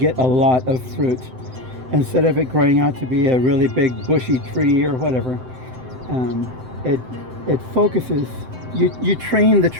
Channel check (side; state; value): left; late; 7.8 ms